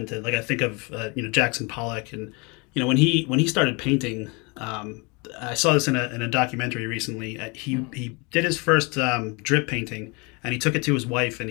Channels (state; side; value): quieter; right; 29.2 dB